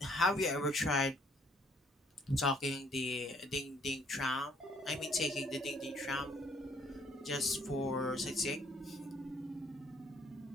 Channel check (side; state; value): both; normal; correlation 0.64